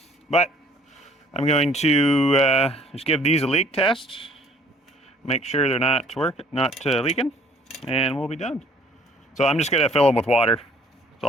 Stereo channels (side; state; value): both; normal; correlation 0.57